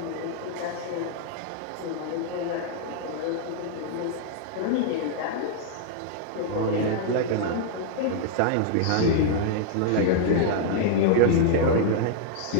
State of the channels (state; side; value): different; both; correlation -0.01